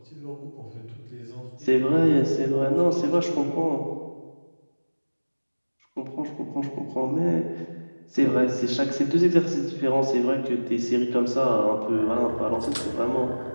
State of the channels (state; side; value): inverted; both; correlation -1.00